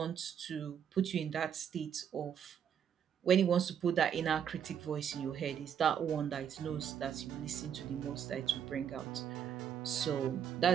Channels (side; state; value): left; quieter; 8.4 dB